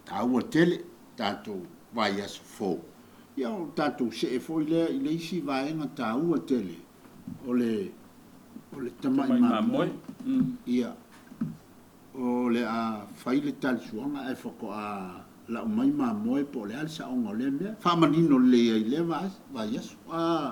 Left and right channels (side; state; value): both; identical; correlation 1.00